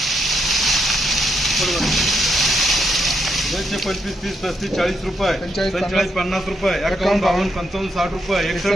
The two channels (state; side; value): normal; both; correlation 0.79